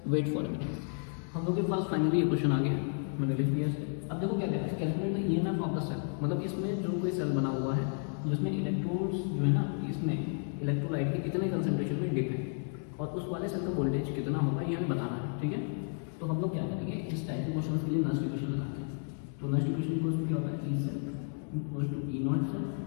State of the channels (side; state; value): right; silent; 56 dB below the other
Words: wait for a minute. हम लोग के पास फाइनली ये क्वेश्चन आ गया, मैंने लिख दिया इसे। अब देखो क्या कहते हैं, calculate the EMF of the cell, मतलब इसमें जो कोई सेल बना हुआ है जिसमें इलेक्ट्रोड्स जो है ना, इसमें इलेक्ट्रोलाइट के कितने कंसंट्रेशन में डिप है और उस वाले सेल का वोल्टेज कितना होगा ये हमें बताना है, ठीक है। तो हम लोग क्या करेंगे, इस टाइप के क्वेश्चन के लिए नस्ट इक्वेशन लगाते हैं। तो नस्ट इक्वेशन इक्वल्स क्या होता है, E cell equals to E naught cell